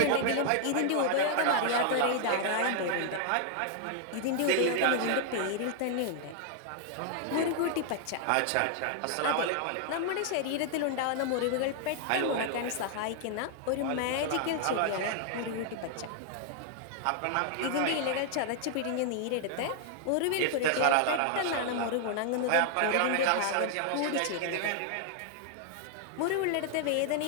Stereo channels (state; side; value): different; both; correlation 0.00